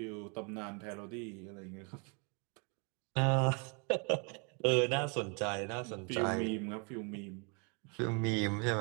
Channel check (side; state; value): left; quieter; 35.5 dB